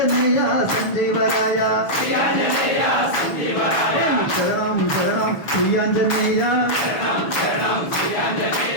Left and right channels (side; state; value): right; late; 6.5 ms